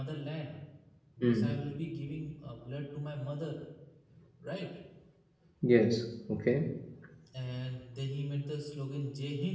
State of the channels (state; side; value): identical; both; correlation 1.00